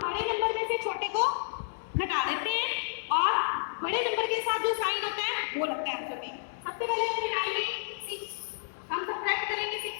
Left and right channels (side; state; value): right; silent; 56 dB below the other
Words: बड़े नंबर में से छोटे को घटा देते हैं और बड़े नंबर के साथ जो साइन होता है वो लगता है आंसर में। सबसे पहले हम घटाएंगे 6, हम सब्ट्रैक्ट करेंगे